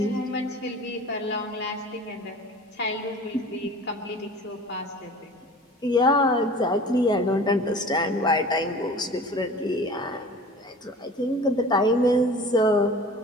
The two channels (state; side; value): normal; both; correlation 0.42